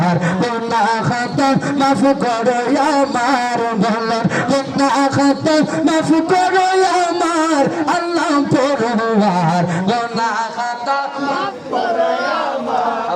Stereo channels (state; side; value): identical; both; correlation 1.00